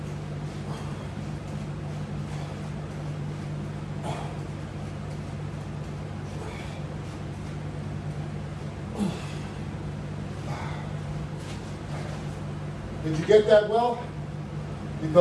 Did you get that well?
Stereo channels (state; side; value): identical; both; correlation 1.00